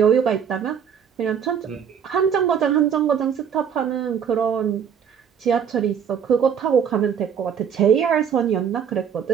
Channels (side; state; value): left; quieter; 7.8 dB